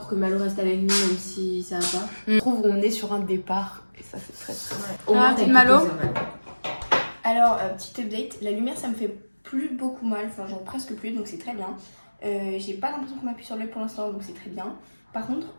que Malo reste avec nous même si ça va pas. Je trouve qu'on est sur un départ et ça c'est très très bien. Au moins, petite Malo. Alors, petit update, la lumière ça me fait plus beaucoup mal, enfin genre presque plus, donc c'est très bien. J'ai pas l'impression qu'on m'appuie sur l'œil pour l'instant, donc c'est très bien. Par contre,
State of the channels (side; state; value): both; inverted; correlation -1.00